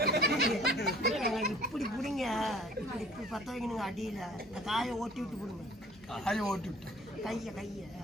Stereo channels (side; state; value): both; normal; correlation 0.52